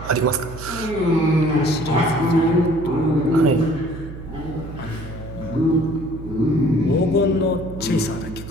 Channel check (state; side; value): noise; right; hum, 12 dB below the sound